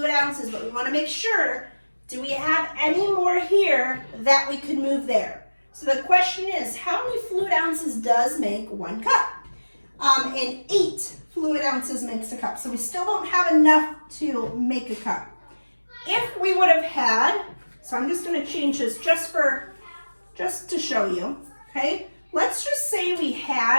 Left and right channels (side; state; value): both; inverted; correlation -1.00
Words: ounces, but we want to make sure, do we have any more here that we could move there? So the question is, how many fluid ounces does make 1 cup? And 8 fluid ounces makes a cup. So we still don't have enough to make a cup. If we would have had, so I'm just going to change this just to show you, okay? Let's just say we